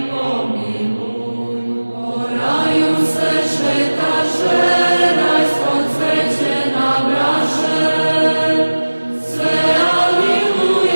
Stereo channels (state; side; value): inverted; both; correlation -1.00